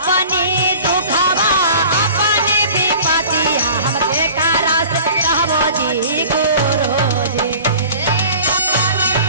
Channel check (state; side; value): inverted; both; correlation -0.44